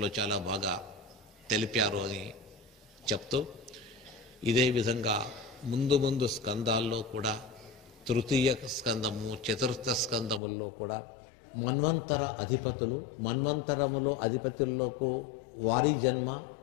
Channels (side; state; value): right; drops out; at 10.4 s